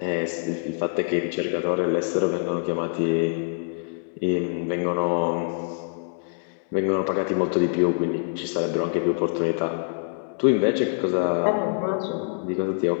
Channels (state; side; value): silent; right; digital silence